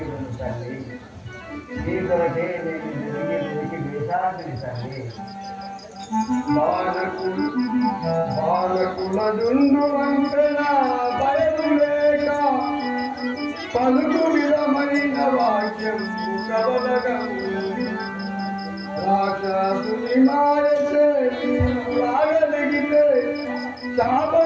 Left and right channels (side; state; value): both; identical; correlation 1.00